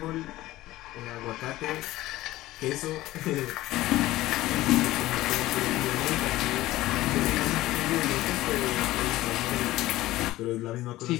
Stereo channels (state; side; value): quieter; right; 16.6 dB